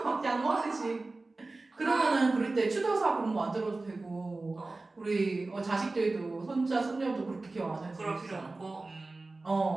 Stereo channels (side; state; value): left; quieter; 3.3 dB